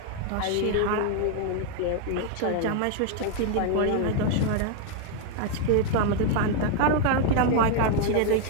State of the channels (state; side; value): different; both; correlation 0.00